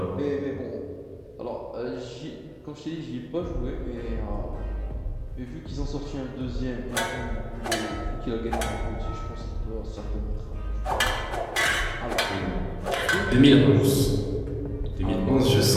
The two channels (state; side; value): identical; both; correlation 1.00